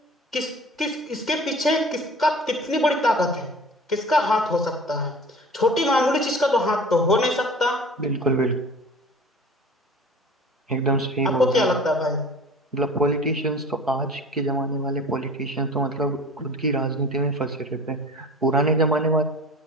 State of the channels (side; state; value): both; normal; correlation 0.42